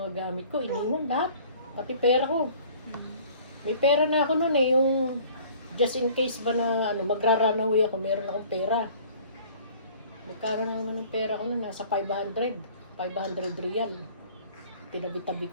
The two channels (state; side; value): inverted; both; correlation -0.50